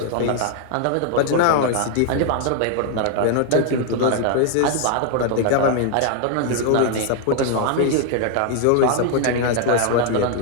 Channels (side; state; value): both; different; correlation 0.00